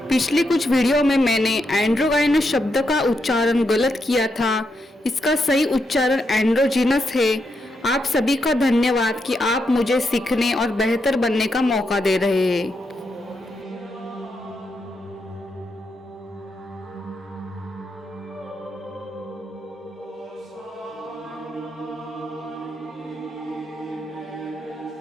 पिछले कुछ वीडियो में मैंने एंड्रोगाइनस शब्द का उच्चारण गलत किया था। इसका सही उच्चारण एंड्रोजीनस है। आप सभी का धन्यवाद कि आप मुझे सीखने और बेहतर बनने का मौका दे रहे हैं।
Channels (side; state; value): both; normal; correlation 0.82